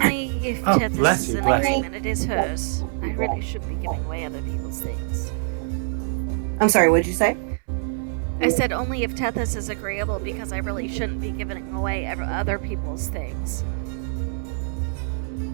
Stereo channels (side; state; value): left; silent; 62 dB below the other